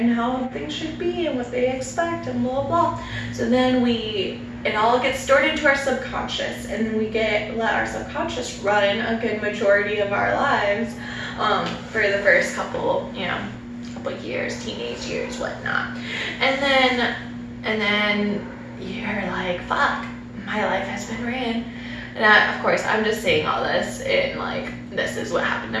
how things should be and what they expect and blah blah. So then it all gets stored into our subconscious, and then we let our subconscious run a good majority of our lives for the first couple years, teenage years, whatnot. And then you're like, fuck, my life has been ran. And of course, I'm just saying all this in like, this is what happened to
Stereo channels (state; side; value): identical; both; correlation 1.00